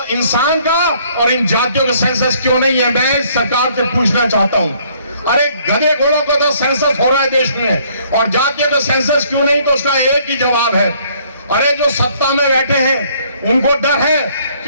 इंसान का और इन जातियों का सेंसस क्यों नहीं है? मैं सरकार से पूछना चाहता हूं। अरे गधे घोड़ों का तो सेंसस हो रहा है देश में, और जातियों का सेंसस क्यों नहीं? तो उसका एक ही जवाब है, अरे जो सत्ता में बैठे हैं उनको डर है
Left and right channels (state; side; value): inverted; both; correlation -0.63